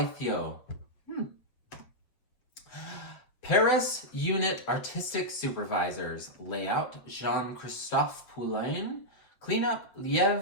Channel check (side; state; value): right; late; 7.9 ms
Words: Paris Unit Artistic Supervisors. Layout, Jean-Christophe Poulain. Cleanup,